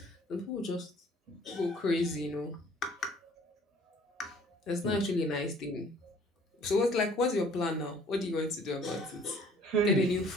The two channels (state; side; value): normal; both; correlation 0.55